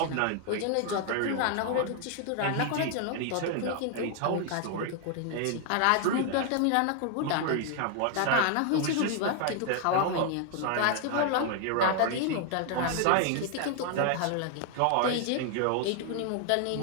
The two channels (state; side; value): different; both; correlation 0.00